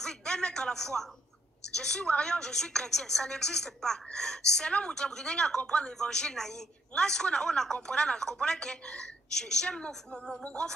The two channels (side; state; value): both; normal; correlation 0.71